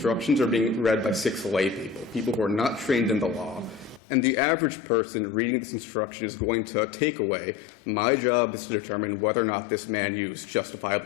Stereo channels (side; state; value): right; drops out; at 4.0 s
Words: are being read by 6 lay people who are not trained in the law, and the average person reading this instruction is going to take away, my job is to determine whether or not this man used